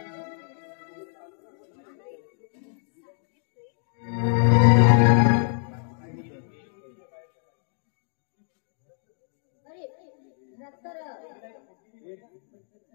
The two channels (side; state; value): right; silent; digital silence